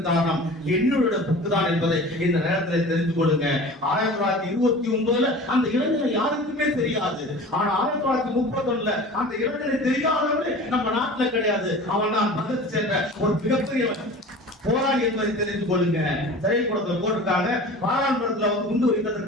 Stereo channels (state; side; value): normal; both; correlation 0.39